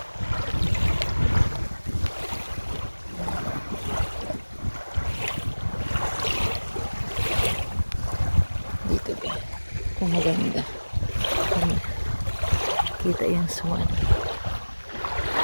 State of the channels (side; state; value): both; inverted; correlation -1.00